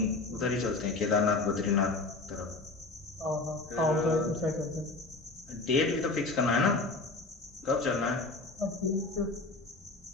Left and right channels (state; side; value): quieter; right; 3.4 dB